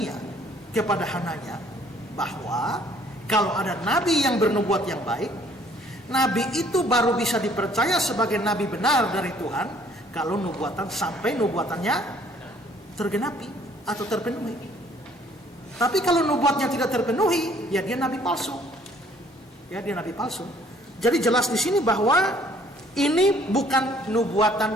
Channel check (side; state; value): both; normal; correlation 0.60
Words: kepada Hananya bahwa kalau ada nabi yang bernubuat yang baik, nabi itu baru bisa dipercaya sebagai nabi benar dari Tuhan kalau nubuatan sampai nubuatannya tergenapi atau terpenuhi. Tapi kalau nubuatnya tidak terpenuhi, ya dia nabi palsu. Ya, dia nabi palsu. Jadi jelas di sini bahwa ini bukan